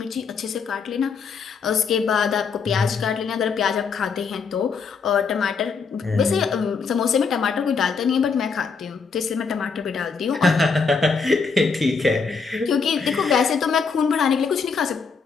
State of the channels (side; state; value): right; quieter; 5.3 dB